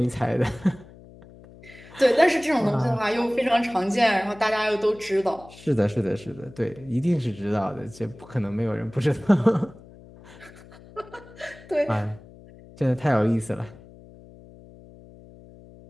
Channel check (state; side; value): noise; left; hum, 21 dB below the sound